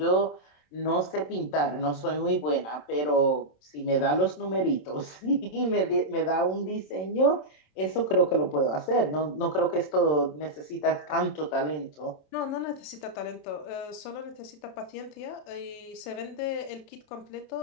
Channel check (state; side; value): late; right; 27 ms